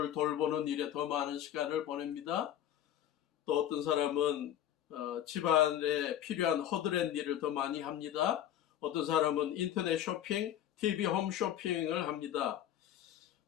돌보는 일에 더 많은 시간을 보냅니다. 또 어떤 사람은 집안에 필요한 허드렛 일을 더 많이 합니다. 어떤 사람은 인터넷 쇼핑, TV 홈 쇼핑을 합니다.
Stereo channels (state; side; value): quieter; right; 11.2 dB